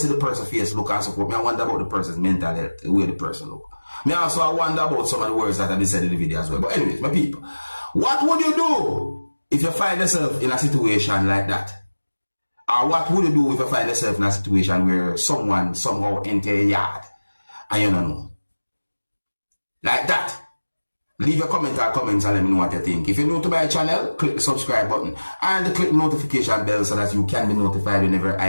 the person's face look and support, I wonder about the person's mental health, the way the person look. Me also I wonder about some of the words that have been said in the video as well. But anyways, my people, what would you do if you find yourself in a situation like that? Or what would you do if you find yourself in a situation where someone somehow enter your yard and you don't know? Like that. Leave your comment or comments and let me know what you think. If you're new to my channel, click the subscribe button and click the notification bell so that you can be notified whenever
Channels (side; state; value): both; inverted; correlation -1.00